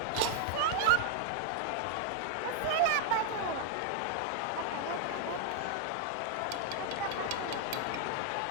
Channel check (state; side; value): different; both; correlation -0.01